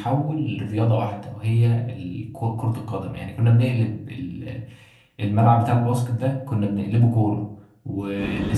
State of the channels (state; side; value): identical; both; correlation 1.00